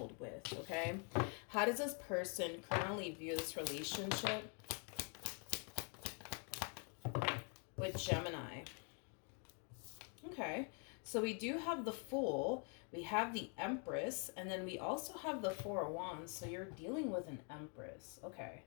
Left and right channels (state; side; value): quieter; right; 39.7 dB